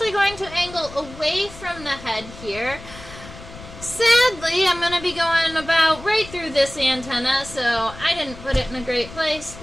going to angle away from the head here. Sadly, I'm going to be going about right through this antenna, so I didn't put it in a great place,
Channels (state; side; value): noise; left; rumble, 16 dB below the sound